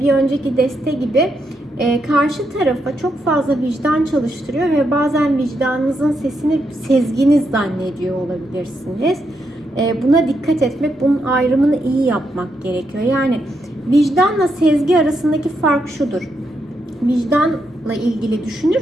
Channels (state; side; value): normal; both; correlation 0.81